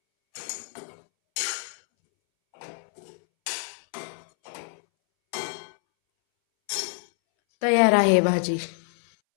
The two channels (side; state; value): right; silent; 61 dB below the other